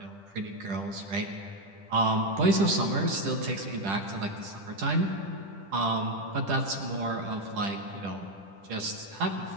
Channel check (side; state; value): left; late; 10 ms